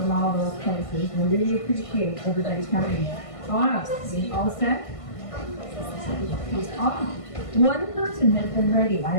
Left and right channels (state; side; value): late; right; 1.5 ms